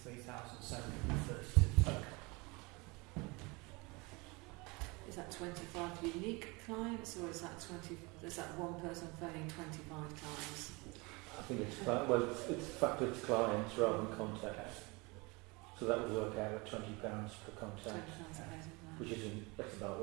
3,732 total. Is that 25 unique clients, or is that one person phoning 25 times? I think it's factored to clients rather than contacts. So that would work out at £20 per contact, which that's about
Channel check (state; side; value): quieter; left; 26.4 dB